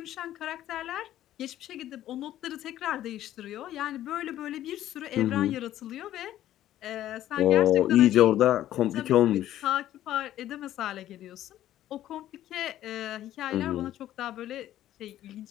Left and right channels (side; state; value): right; quieter; 12.9 dB